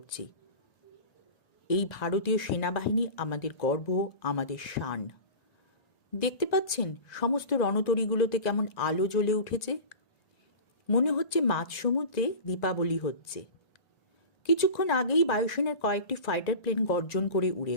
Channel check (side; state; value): right; late; 1.9 ms